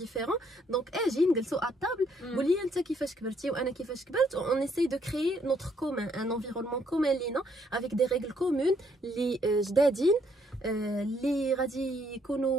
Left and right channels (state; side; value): normal; both; correlation 0.69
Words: دونك اجي نجلسوا ا طابل قول لي انت كيفاش كبرتي وانا كيفاش كبرت اون ايساي دو كريي نوتر كومون ان انفيرونمون كومون لينا افيك دي ريغل كومون اللي جدادين اللي غادي